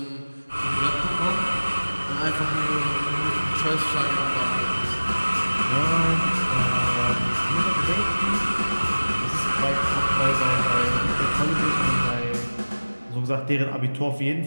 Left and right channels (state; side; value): inverted; both; correlation -1.00